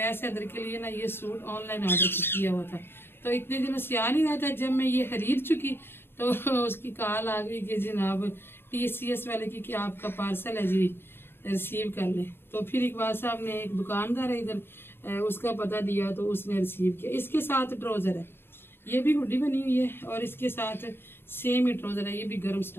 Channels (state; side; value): late; right; 0.11 ms